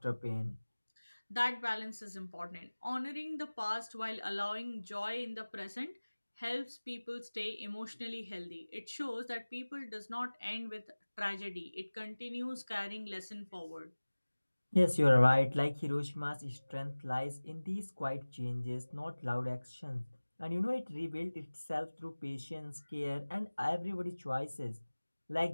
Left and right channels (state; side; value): inverted; both; correlation -1.00